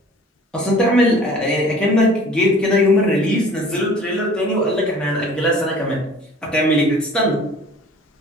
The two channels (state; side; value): normal; both; correlation 0.48